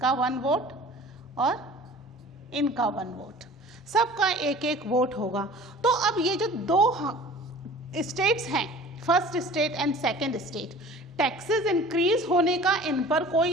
1 वोट और इनका 1 वोट, सबका एक एक वोट होगा। तो अब ये जो 2 स्टेट्स हैं, first state and second state, taxes increase होने का इन पर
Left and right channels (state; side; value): normal; both; correlation 0.44